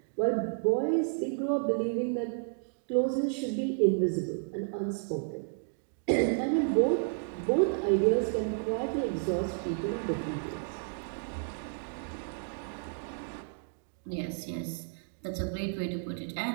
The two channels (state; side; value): silent; left; digital silence